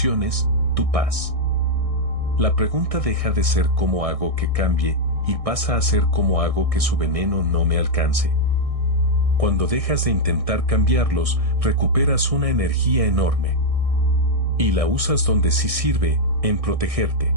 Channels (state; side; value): late; left; 1.6 ms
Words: tu paz. La pregunta deja de ser cómo hago que cambie, y pasa a ser cómo hago que su veneno no me alcance. Cuando dejas de intentar cambiarlos, recuperas una energía enorme. Y la usas donde sí sirve, en protegerte.